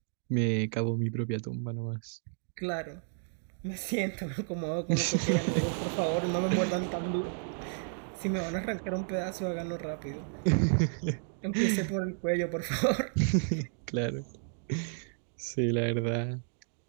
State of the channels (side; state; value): left; silent; 56 dB below the other